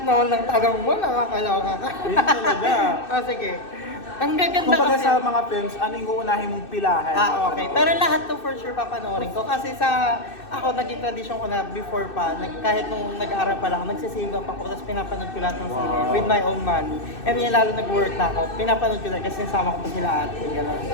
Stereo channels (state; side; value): late; right; 2.6 ms